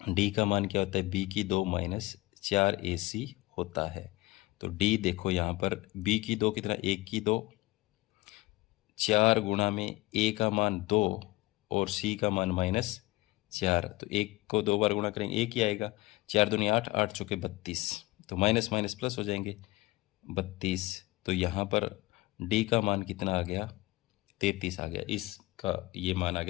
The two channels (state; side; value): quieter; right; 19.9 dB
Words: d का मान क्या होता है, b की 2 -4ac होता है। तो d देखो यहाँ पर b की 2 कितना, 1 की 2, 4 गुणा में a का मान 2 और c का मान -4। तो 1 को 2 बार गुणा करेंगे 1 ही आएगा, 4 दूनी 8, 8 चौके 32, तो माइनस माइनस प्लस हो जाएंगे 32। तो यहाँ पर d का मान कितना आ गया, 33 आ गया। इस का ये मान आ